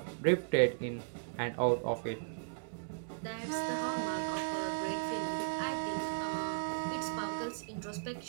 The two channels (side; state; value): left; silent; digital silence